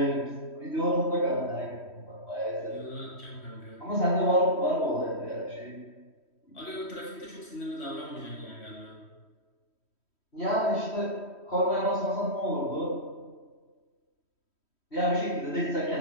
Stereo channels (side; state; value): right; late; 3.1 ms